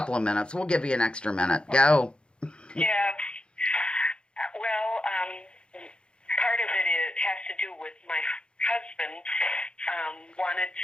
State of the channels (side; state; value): right; late; 0.053 ms